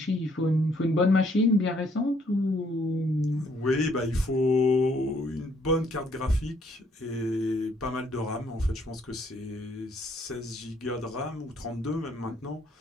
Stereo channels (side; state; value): both; normal; correlation 0.67